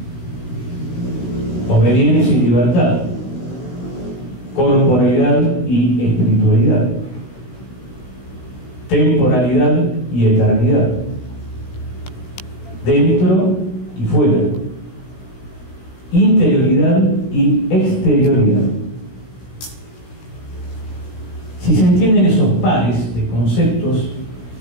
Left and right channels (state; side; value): late; right; 16 ms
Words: obediencia y libertad, corporalidad y espiritualidad, temporalidad y eternidad, dentro y fuera, interioridad y exterioridad. Si se entienden esos pares de conceptos